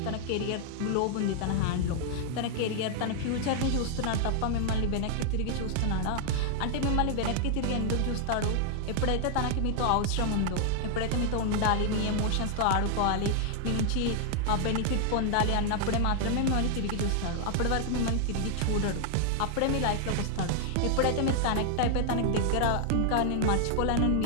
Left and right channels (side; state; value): both; different; correlation 0.00